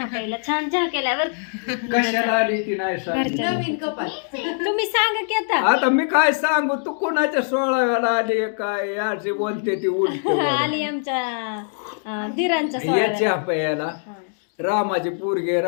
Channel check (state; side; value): silent; right; digital silence